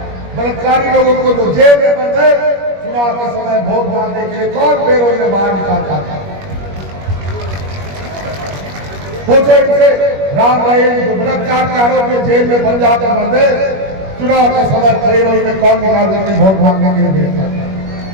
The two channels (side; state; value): left; late; 21 ms